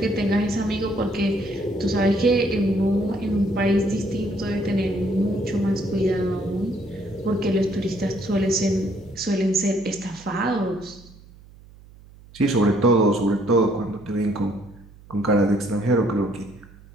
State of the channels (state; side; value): noise; right; hum, 23 dB below the sound